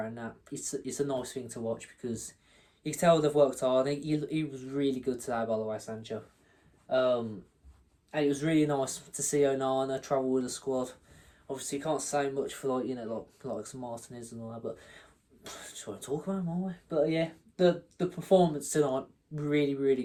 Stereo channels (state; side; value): identical; both; correlation 1.00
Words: that. It's a nice thing to watch, because you can tell they've worked hard. He was really good today, by the way, Sancho. And it was really nice to see Onana travel with the squad. Obviously, you can't say much for like some Martinez and all that, but just want to talk about him, aren't we? But yeah, the performance tonight, really, really